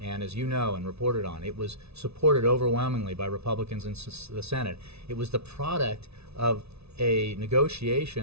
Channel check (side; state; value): left; late; 0.79 ms